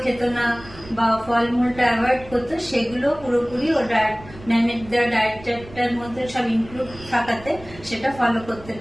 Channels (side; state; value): right; noise; rumble, 18 dB below the sound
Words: খেত না বা ফলমূলটা অ্যাভয়েড করতো, সেগুলো পুরোপুরি ও ম্যামের দেওয়া ডায়েট চার্টটার মধ্যে সব ইনক্লুড থাকাতে সেটা ফলো করতে